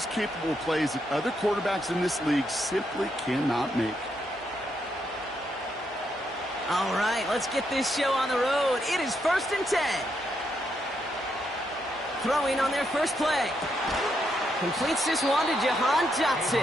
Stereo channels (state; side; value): normal; both; correlation 0.79